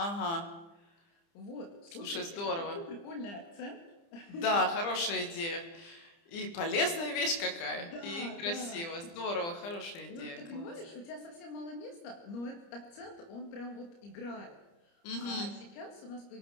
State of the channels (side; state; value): right; late; 30 ms